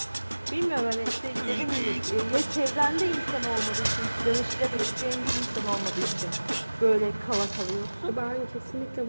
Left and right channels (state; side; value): inverted; both; correlation -1.00